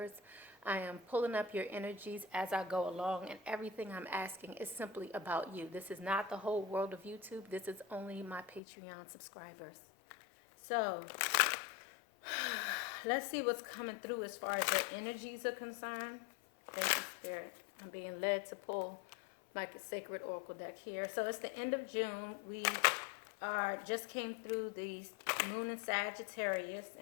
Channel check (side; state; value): right; drops out; at 8.6 s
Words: I am pulling up your energies as I go along, and everything I'm asking is simply about you. This is not the whole world of YouTube. This is only my Patreon subscribers. So let's see what's coming through as far as your energies are concerned. Thank you, Spirit. I'm being led to pull like the Sacred Oracle deck here. So it's the end of June. We just came through the moon in Sagittarius,